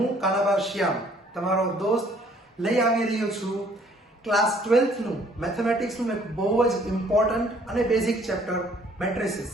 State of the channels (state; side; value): normal; both; correlation 0.60